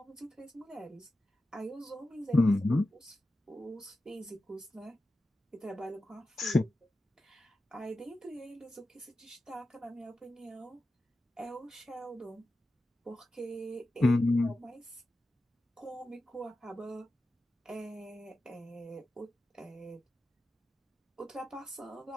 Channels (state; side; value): normal; both; correlation 0.92